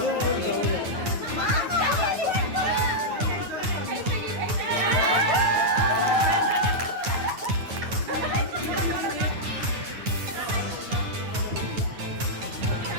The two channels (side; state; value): left; late; 9.5 ms